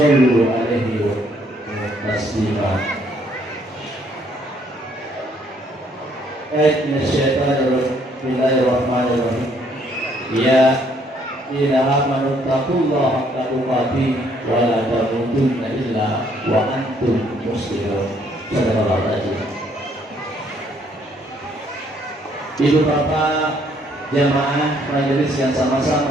'alaihi wa taslima. Bismillahirrahmanirrahim. Ya ila amanu taqullaha haqqa tuqatih wa la tamutunna illa wa antum muslimun. Sallallahu alaihi wasallam. Ibu bapak jamaah majelis yang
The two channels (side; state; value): both; normal; correlation 0.67